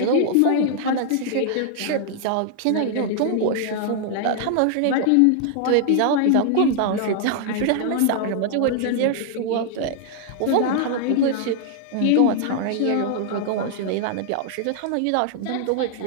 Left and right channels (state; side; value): different; both; correlation 0.00